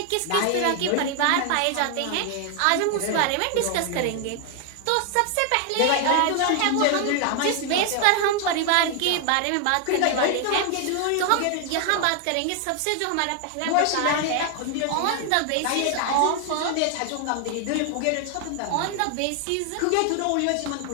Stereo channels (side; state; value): both; different; correlation 0.00